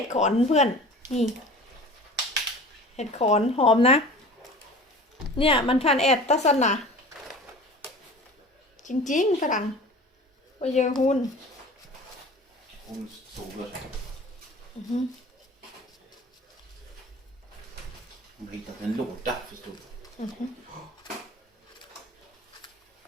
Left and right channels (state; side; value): normal; both; correlation 0.40